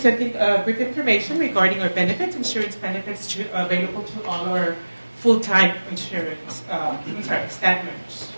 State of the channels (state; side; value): inverted; both; correlation -1.00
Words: brief information regarding our benefits, insurance benefits available to all our full-time insurance, staff members.